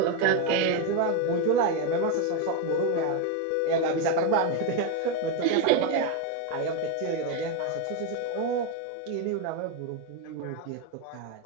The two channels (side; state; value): both; different; correlation 0.02